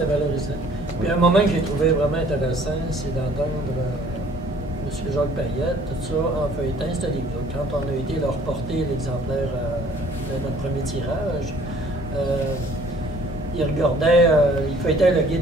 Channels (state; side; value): normal; both; correlation 0.56